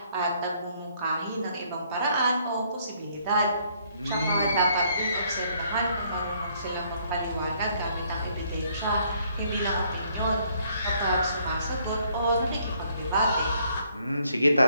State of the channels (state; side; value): inverted; both; correlation -0.66